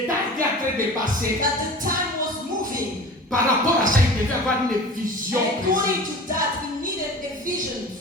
temps était en train de passer. that the time was moving. Par rapport à ça, il devait avoir une vision And précise. according to that, he needed a vision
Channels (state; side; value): normal; both; correlation 0.38